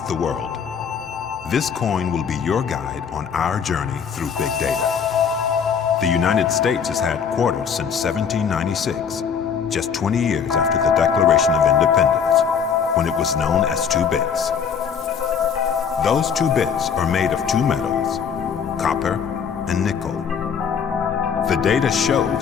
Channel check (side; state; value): right; quieter; 7.0 dB